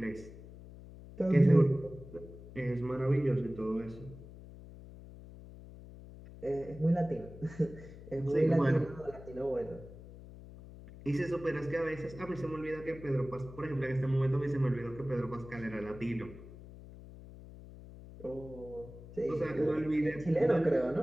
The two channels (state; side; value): noise; left; hum, 16 dB below the sound